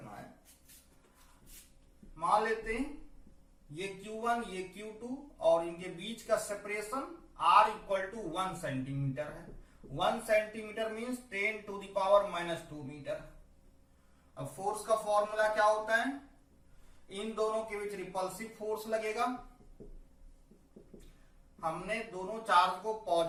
है। मान लेते हैं ये Q1 ये Q2 और इनके बीच का सेपरेशन R = 1 सेंटीमीटर है। 1 सेंटीमीटर मीन्स 10⁻⁻2 मीटर। अब फोर्स का फॉर्मूला क्या होता है, इन दोनों के बीच रिपल्सिव फोर्स लगेगा। हमने दोनों चार्ज को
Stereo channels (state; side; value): identical; both; correlation 1.00